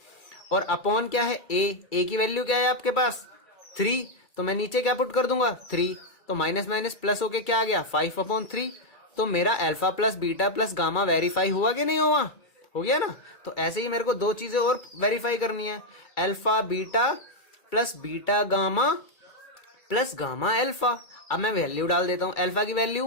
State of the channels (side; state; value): right; late; 2.3 ms